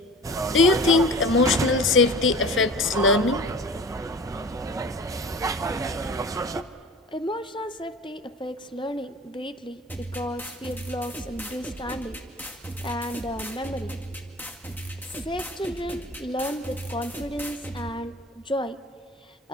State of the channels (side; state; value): both; normal; correlation 0.40